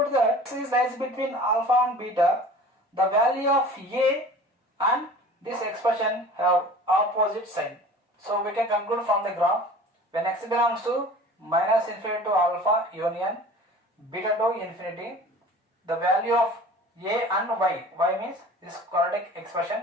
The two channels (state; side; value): normal; both; correlation 0.43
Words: that this lies between alpha and beta. The value of a and this expression have opposite sign. So we can conclude from the graph, when x belongs to minus infinity to alpha union beta to infinity, the value of a and y means this quadratic expression